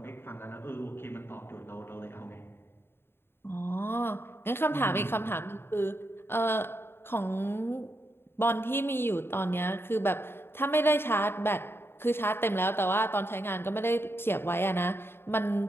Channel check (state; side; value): late; right; 0.11 ms